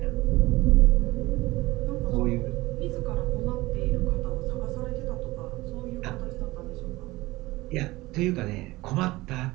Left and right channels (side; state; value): left; quieter; 19.7 dB